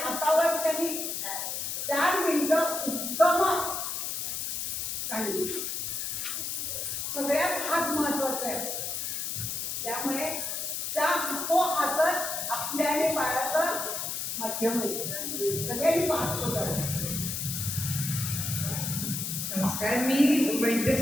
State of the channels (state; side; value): noise; left; hiss, 3 dB below the sound